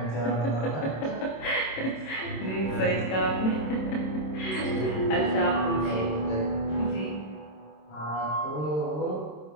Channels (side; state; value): right; late; 26 ms